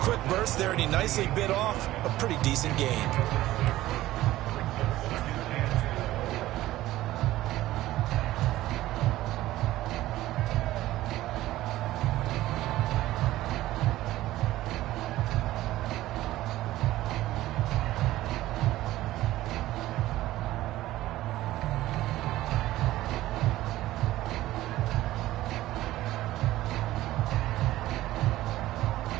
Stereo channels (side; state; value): left; quieter; 15.7 dB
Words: burst there, and he nicely bit off a pretty decent gain.